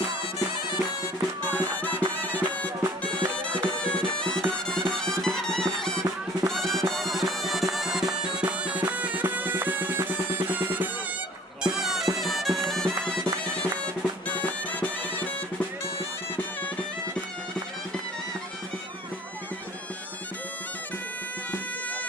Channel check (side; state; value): both; normal; correlation 0.51